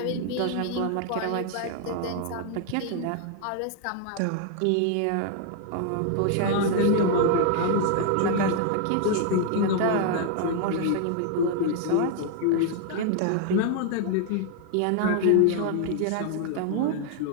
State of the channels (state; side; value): different; both; correlation 0.00